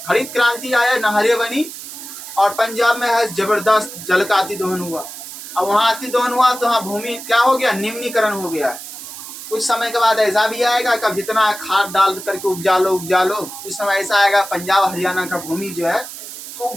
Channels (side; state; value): right; noise; hiss, 12 dB below the sound